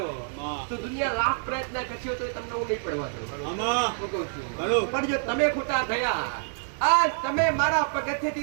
તો દુનિયા લાખ પ્રયત્ન કરશો તો તમને હું નહીં પડવા દઉં. પણ જો તમે ખોટા થયા, આ તમે મારા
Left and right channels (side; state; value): left; silent; digital silence